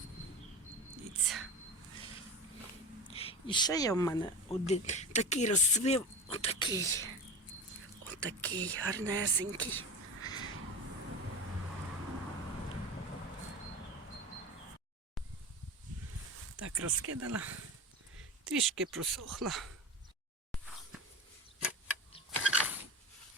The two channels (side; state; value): both; normal; correlation 0.29